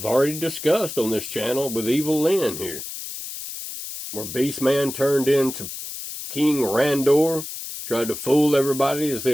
already discussed on this channel with Evil Lynn here. where Beastman turned into King Randor, tried to fool everybody as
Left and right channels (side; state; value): left; noise; hiss, 9 dB below the sound